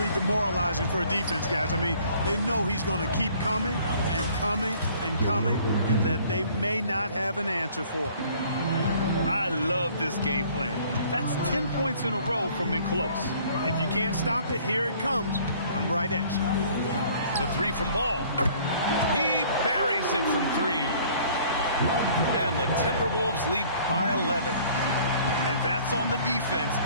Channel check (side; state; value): both; inverted; correlation -0.55